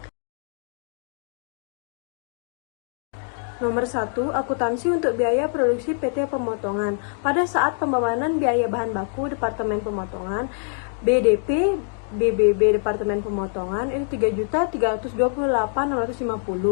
Nomor 1, akuntansi untuk biaya produksi PT Pemotongan. Pada saat pembebanan biaya bahan baku Departemen Pemotongan, BDP, BBB Departemen Pemotongan itu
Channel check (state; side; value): silent; right; 62 dB below the other